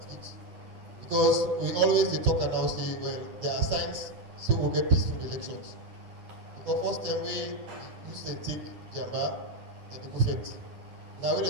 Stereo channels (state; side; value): late; left; 9.7 ms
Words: it. Because we always they talk and now say, well, there are signs, so we'll get peaceful elections. Because first time we use and take Jamba and the buffet. Now when